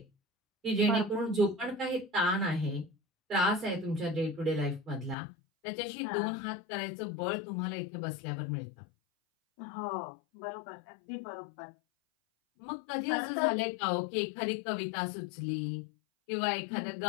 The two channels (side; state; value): right; drops out; at 5.2 s